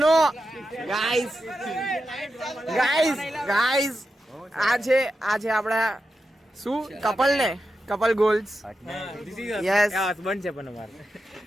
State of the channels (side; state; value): both; normal; correlation 0.89